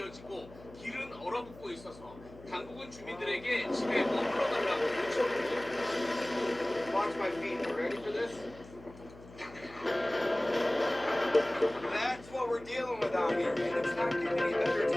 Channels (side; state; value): left; noise; hum, 20 dB below the sound